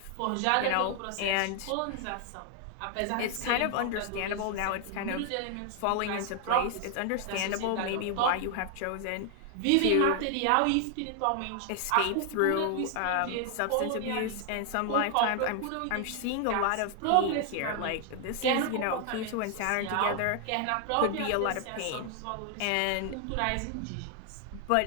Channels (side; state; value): both; different; correlation 0.00